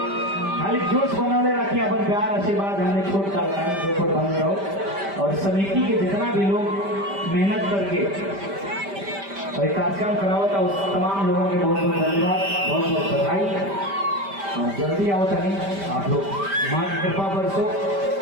खाली जोश बनौले रखिए, अपन प्यार आशीर्वाद हमने छोट का ऊपर बन रहो। और समिति के जितना भी लोग मेहनत करके और कार्यक्रम कराओ था, उस तमाम लोगों के बहुत बहुत धन्यवाद, बहुत बहुत बधाई। और जल्दी आओ तनी आप लोग, माँ की कृपा बरसो।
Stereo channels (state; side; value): late; left; 5.1 ms